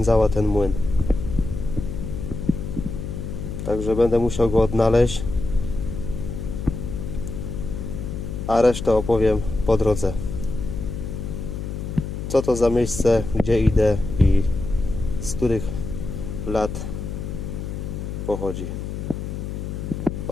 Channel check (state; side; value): noise; left; hum, 6 dB below the sound